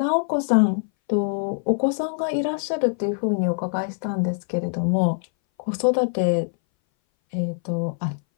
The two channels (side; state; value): right; silent; 60 dB below the other